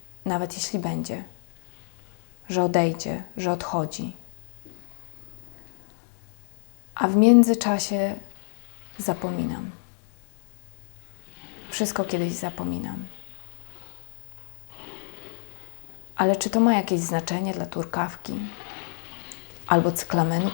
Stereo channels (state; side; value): silent; right; digital silence